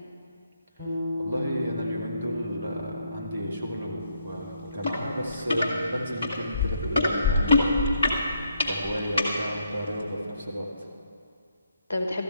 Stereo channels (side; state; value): both; inverted; correlation -0.74